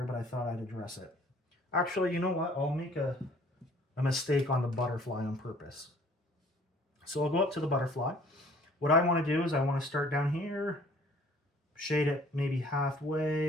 but I thought I'd address it. Actually, you know what? I'll make a mistake on the butterfly on purpose. So I'll go up to the butterfly. What I want to do is I want to start down here, shade it maybe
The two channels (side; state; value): both; normal; correlation 0.55